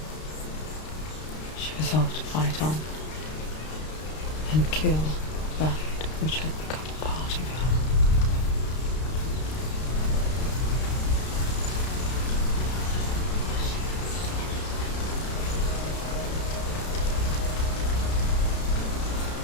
She resolved to fight on and kill that which had become a part of her.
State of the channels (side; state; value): right; late; 32 ms